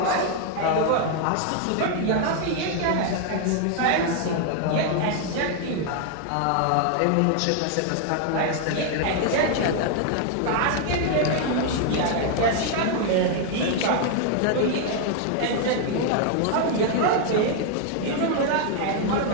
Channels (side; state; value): both; different; correlation 0.00